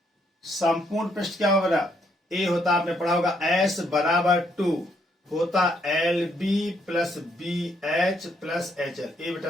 पृष्ठ क्या होगा, ए होता आपने पढ़ा होगा S बराबर 2 होता LB plus BH plus HL। ये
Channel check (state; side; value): normal; both; correlation 0.72